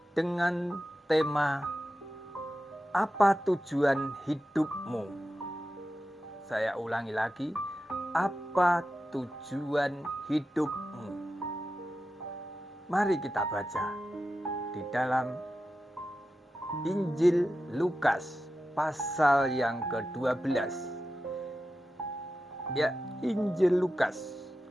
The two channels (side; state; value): both; normal; correlation 0.91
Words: dengan tema apa tujuan hidupmu? Saya ulangi lagi, apa tujuan hidupmu? Mari kita baca di dalam Injil Lukas pasal yang ke-12. Ya, Injil Lukas